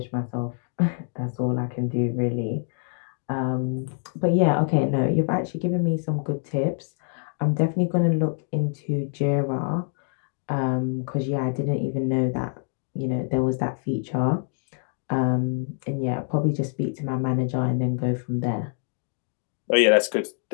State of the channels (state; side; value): silent; right; 61 dB below the other